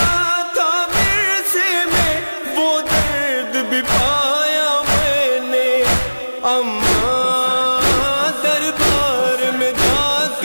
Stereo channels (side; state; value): both; inverted; correlation -1.00